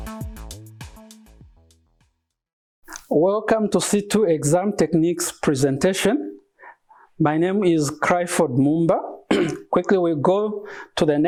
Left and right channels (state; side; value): identical; both; correlation 1.00